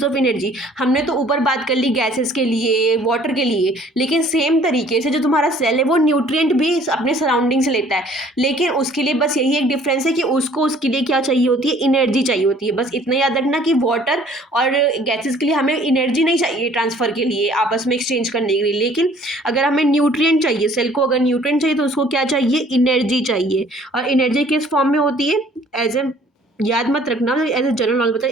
of energy. हमने तो ऊपर बात कर ली गैसेस के लिए, वाटर के लिए, लेकिन सेम तरीके से जो तुम्हारा सेल है वो न्यूट्रिएंट भी अपने सराउंडिंग से लेता है, लेकिन उसके लिए बस यही एक डिफरेंस है कि उसको उसके लिए क्या चाहिए होती है, एनर्जी चाहिए होती है। बस इतना याद रखना कि वाटर और गैसेस के लिए हमें एनर्जी नहीं चाहिए ट्रांसफ़र के लिए, आपस में एक्सचेंज करने के लिए, लेकिन अगर हमें न्यूट्रिएंट चाहिए, सेल को अगर न्यूट्रिएंट चाहिए तो उसको क्या चाहिए, एनर्जी चाहिए। और एनर्जी किस फॉर्म में होती है, एज ए, याद मत रखना, एज ए जनरल नॉलेज बताए,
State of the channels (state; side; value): normal; both; correlation 0.56